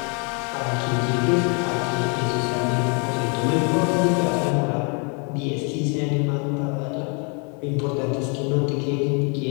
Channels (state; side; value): quieter; right; 36.0 dB